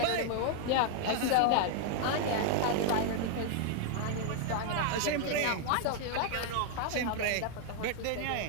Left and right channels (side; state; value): both; different; correlation 0.00